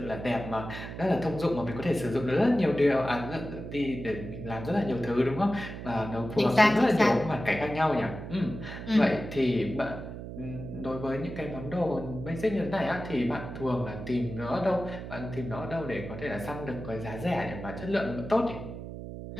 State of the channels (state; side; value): noise; right; hum, 9 dB below the sound